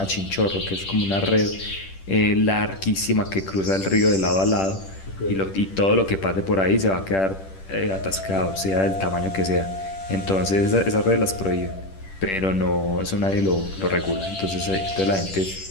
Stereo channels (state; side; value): late; right; 10 ms